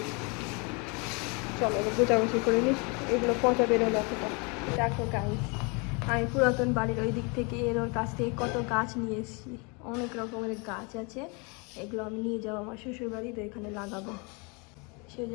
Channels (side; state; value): right; quieter; 31.3 dB